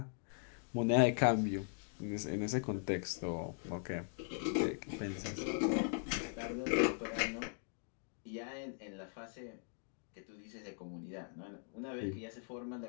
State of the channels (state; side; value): silent; right; 51 dB below the other